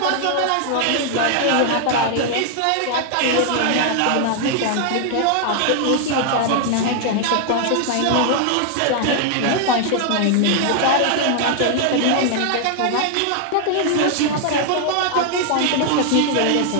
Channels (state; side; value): different; both; correlation 0.00